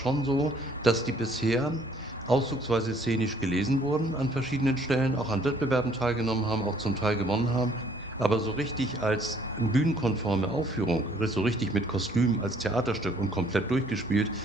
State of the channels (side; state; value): both; normal; correlation 0.61